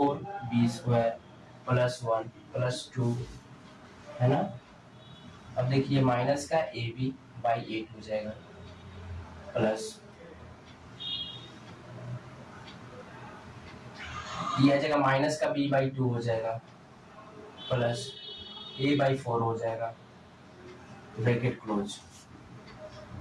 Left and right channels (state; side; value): identical; both; correlation 1.00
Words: square plus 1 plus 2, है ना। अब देखिए माइनस का ab/8 हो जाएगा प्लस ये आ जाएगा माइनस का b/2 हो जाएगा प्लस a/4 हो जाएगा ब्रैकेट क्लोज।